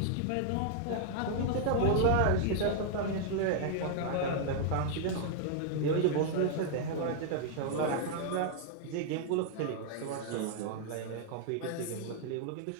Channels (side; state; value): both; different; correlation -0.01